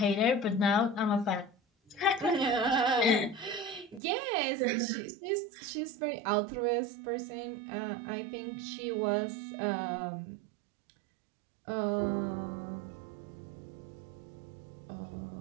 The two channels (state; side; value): drops out; left; at 4.0 s